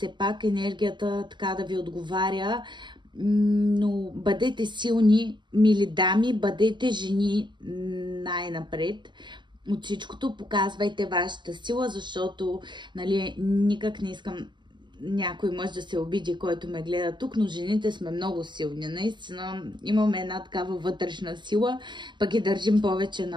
пак енергията така да ви отговаря. Но бъдете силни, мили дами, бъдете жени най-напред. От всичкото показвайте вашата сила, защото нали, никак не искам някой мъж да се обиди, който ме гледа тук, но жените сме много силни. Наистина имаме една такава вътрешна сила, пък и държим повече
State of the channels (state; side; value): late; left; 0.22 ms